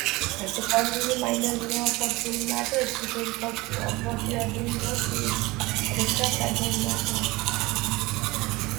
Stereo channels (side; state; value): left; quieter; 21.8 dB